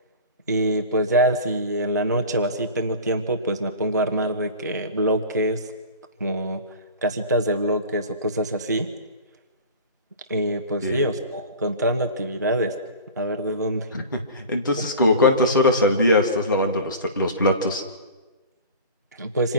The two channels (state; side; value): inverted; both; correlation -0.36